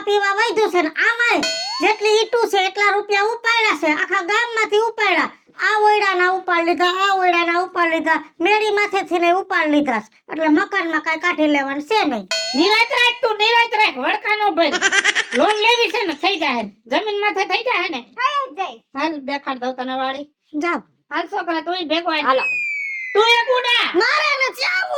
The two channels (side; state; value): both; identical; correlation 1.00